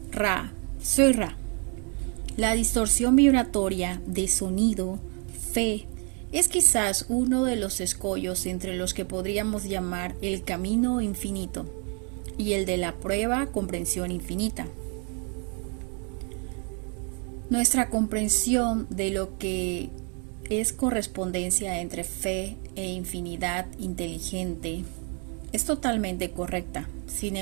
Ra, soy Ra. La distorsión vibratoria de sonido, fe, es quizás uno de los escollos entre los que podríamos llamar el camino infinito y el de la prueba comprensión infinita. Nuestra comprensión de lo que es correspondencia entre fe e infinidad inteligente es totalmente correcta. Sin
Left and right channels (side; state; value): left; quieter; 35.6 dB